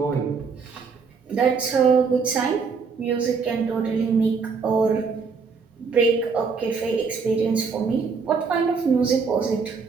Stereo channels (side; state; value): left; quieter; 5.2 dB